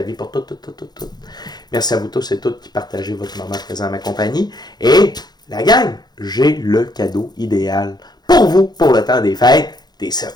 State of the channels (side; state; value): right; late; 0.20 ms